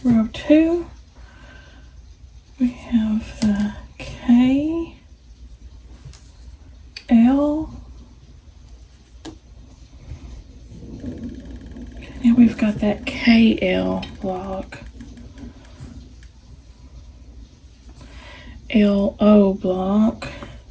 Row 2, we have the K, L, now we've got that KL block, LO block,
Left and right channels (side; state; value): both; identical; correlation 1.00